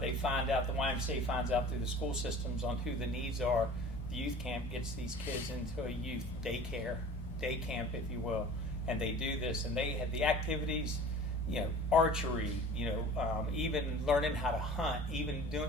finds out through the school systems on who the needs are. The youth camp gets these kids into a youth day camp, if you will, and they do this, and they have the activities, archery, even learning how to hunt, even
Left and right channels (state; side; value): normal; both; correlation 0.42